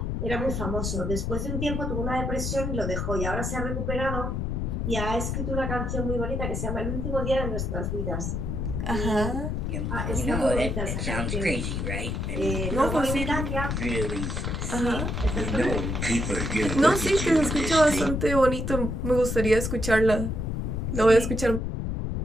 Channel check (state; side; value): noise; left; rumble, 1 dB below the sound